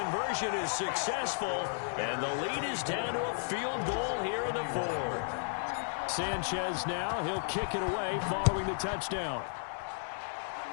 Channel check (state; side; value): silent; right; digital silence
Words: is successful. And the lead is down to a field goal here in the fourth. Sanchez now, he'll kick it away following the touchdown.